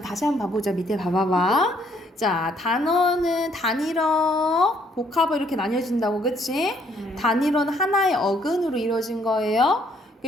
다시 한번 봐보자. 밑에 봐봐봐. 자, 단어는 단일어, 복합어 이렇게 나뉘어진다고, 그치? 단일어는 하나의 어근으로 이루어진 거예요.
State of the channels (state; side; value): normal; both; correlation 0.67